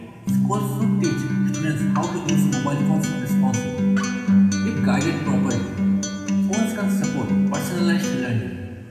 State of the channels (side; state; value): both; identical; correlation 1.00